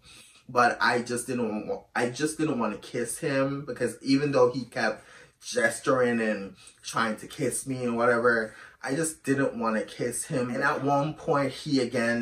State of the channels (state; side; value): identical; both; correlation 1.00